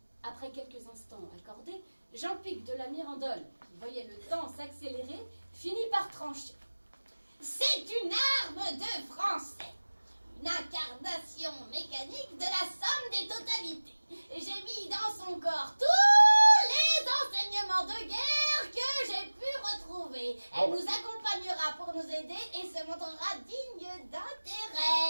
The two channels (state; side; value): inverted; both; correlation -1.00